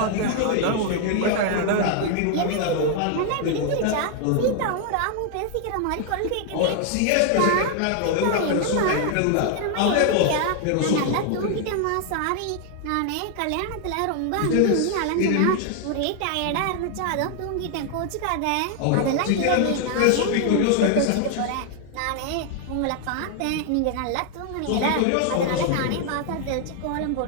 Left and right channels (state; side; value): different; both; correlation 0.00